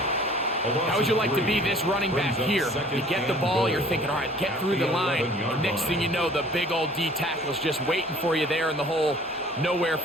How would you like to be this running back here? You get the ball, you're thinking, all right, get through the line. And next thing you know, the big old D tackle's just waiting for you there in the hole. Nowhere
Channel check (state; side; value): normal; both; correlation 0.51